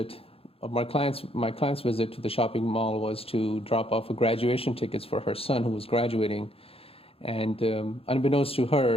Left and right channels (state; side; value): late; right; 0.27 ms